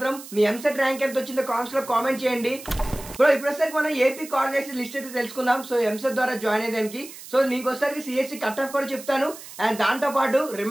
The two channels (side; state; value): right; noise; hiss, 15 dB below the sound